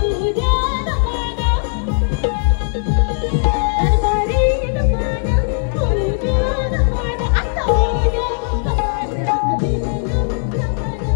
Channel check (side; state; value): right; silent; digital silence